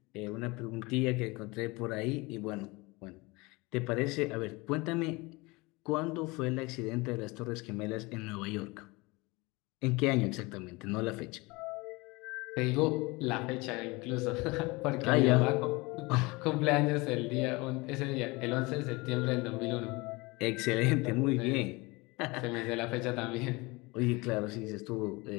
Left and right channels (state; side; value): quieter; right; 24.4 dB